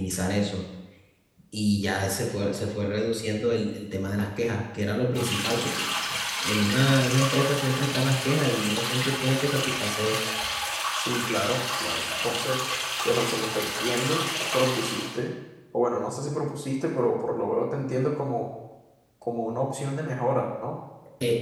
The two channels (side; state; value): both; identical; correlation 1.00